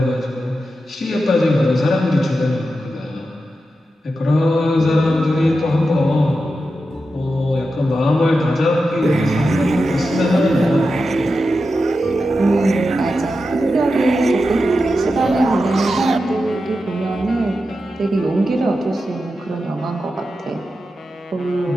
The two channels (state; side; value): normal; both; correlation 0.90